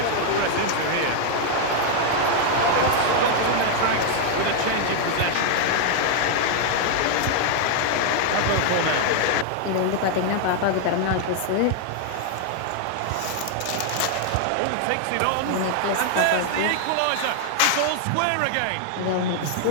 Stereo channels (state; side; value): different; both; correlation 0.00